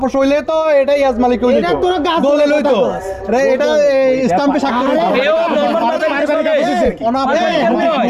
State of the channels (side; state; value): both; identical; correlation 1.00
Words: হইলে তো এটাই আজমালিক হইল এটা তোর গাছ বলে লই তো এটা স্ট্যাম্পে স্বাক্ষর এও নরমাল